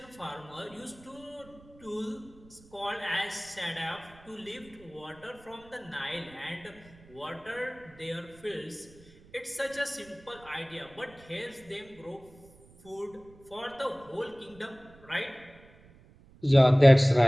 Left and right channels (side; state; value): right; noise; rumble, 24 dB below the sound